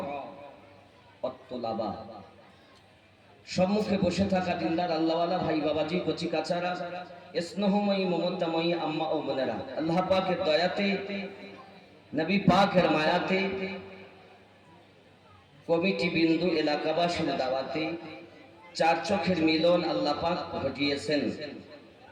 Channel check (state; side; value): identical; both; correlation 1.00